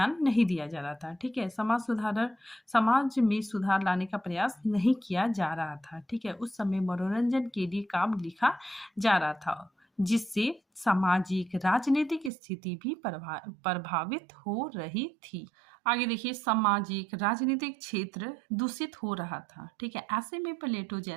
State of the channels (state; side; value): drops out; left; at 12.3 s